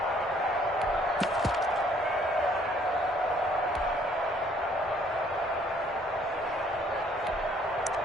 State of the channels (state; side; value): normal; both; correlation 0.62